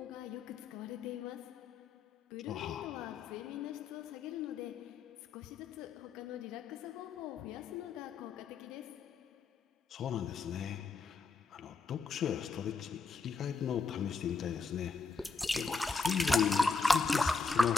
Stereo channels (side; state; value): right; quieter; 4.4 dB